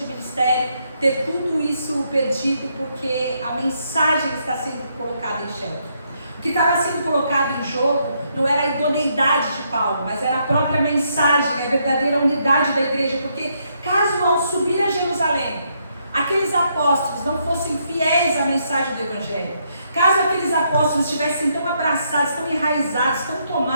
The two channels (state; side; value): inverted; both; correlation -0.75